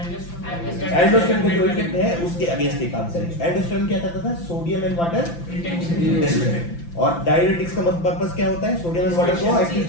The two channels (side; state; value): right; late; 5.9 ms